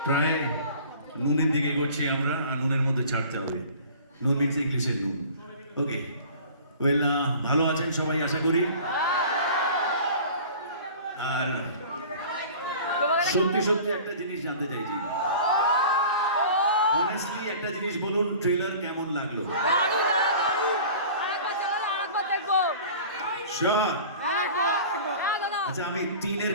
প্রায় নুনের দিকে এগোচ্ছি আমরা, আর নুনের মধ্যে ছাড়তে হবে। নুন মিনস ইংলিশের নুন। ওকে, ওয়েল, ভালো আছেন সবাই আশা করি। আর সত্যি সত্যি একটা জিনিস জানতে চাইছি, অনেস্টলি একটা জিনিস বলুন, ট্রেলার কেমন লাগলো? দারুণ দাদা, দারুণ। আরেকবার চালালে আরেকবার দেখবো। শিওর? হ্যাঁ দাদা। আচ্ছা, আমি 3 এর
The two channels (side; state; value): both; inverted; correlation -0.43